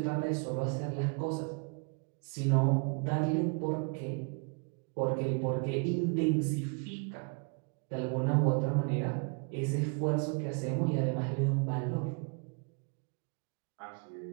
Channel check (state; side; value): quieter; left; 35.7 dB